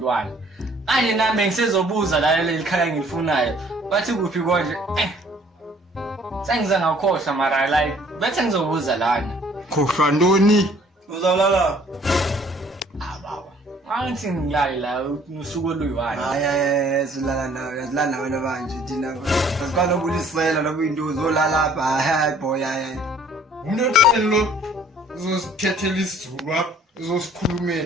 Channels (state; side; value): normal; both; correlation 0.58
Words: Manje nami ngisezobuza la leli khaya ngilifunayo. Bathi kuphi konje? Sengize ngakhohlwa mara like bethe ngizobuza lana. khohlwa ntoni Uzawulala. Baba. Angithi ngilale la usuku oluyi-1. Hayi silala nawe, yasilala nawe manje thina. Asikwazi ukulisela lobu into uzolala apha. Hayi boy hayi. umnotelo uzosithethela isizulu apha